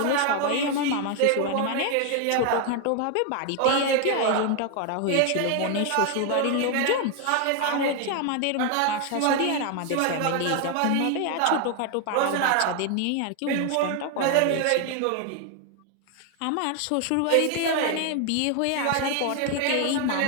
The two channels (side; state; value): both; different; correlation 0.01